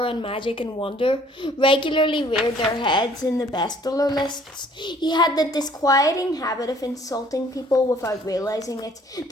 and magic and wonder, regularly reared their heads in the bestseller lists, he had the disquieting habit of insulting people without realizing it,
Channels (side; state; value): both; normal; correlation 0.58